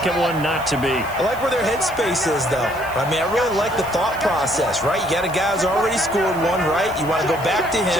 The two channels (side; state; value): left; noise; hiss, 19 dB below the sound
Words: one not to be. I like where their headspace is, though. I mean, I really like the thought process, right? You got a guy who's already scored one, right? You want to go back to